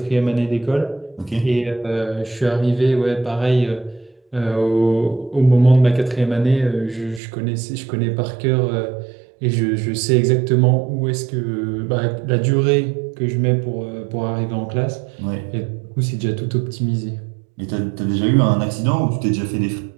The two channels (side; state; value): left; drops out; at 7.2 s